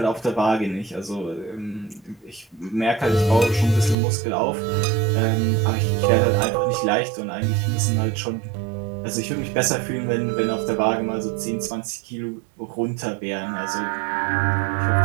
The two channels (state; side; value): drops out; left; at 4.0 s